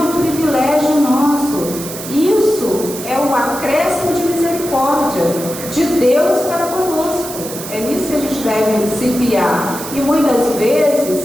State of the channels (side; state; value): right; noise; hiss, 10 dB below the sound